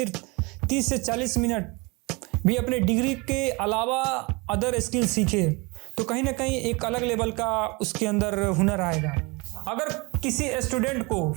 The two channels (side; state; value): left; quieter; 26.9 dB